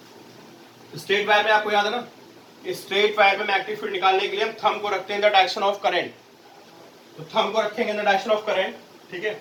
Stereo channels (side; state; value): both; identical; correlation 1.00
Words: स्ट्रेट वायर में आपको याद है ना, स्ट्रेट वायर में मैग्नेटिक फील्ड निकालने के लिए हम थंब को रखते हैं in the direction of current. तो थंब को रखेंगे in the direction of current, ठीक है,